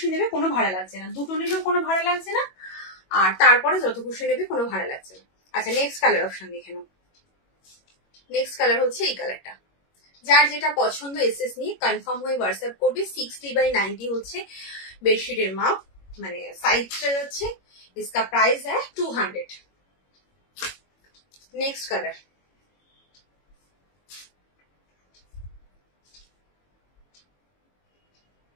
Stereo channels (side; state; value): right; late; 21 ms